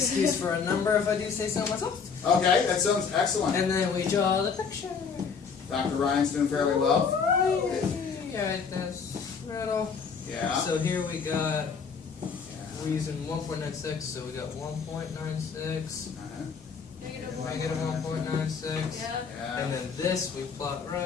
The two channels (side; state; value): right; quieter; 5.9 dB